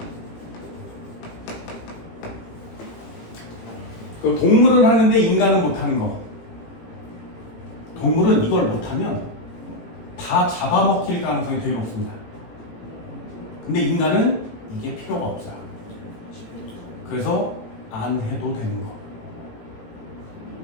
그 동물은 하는데 인간은 못하는 거. 동물은 이걸 못하면 다 잡아먹힐 가능성이 되게 높습니다. 근데 인간은 이게 필요가 없어요. 그래서 안 해도 되는 거.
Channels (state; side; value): late; right; 18 ms